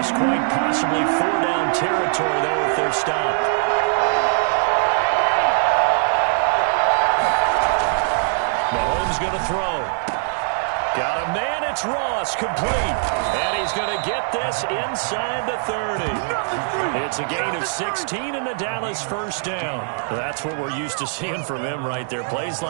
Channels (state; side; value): silent; left; digital silence